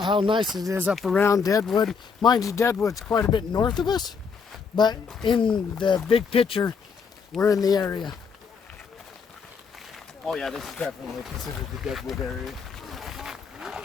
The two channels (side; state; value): right; quieter; 5.7 dB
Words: how nice it is up around Deadwood. Mind you, Deadwood's quite a bit north of us, but in the big picture, we're in the area. Oh yeah, this is definitely considered the Deadwood area.